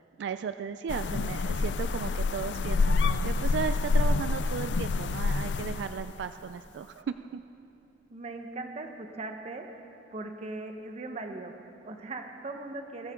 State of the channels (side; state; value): both; normal; correlation 0.65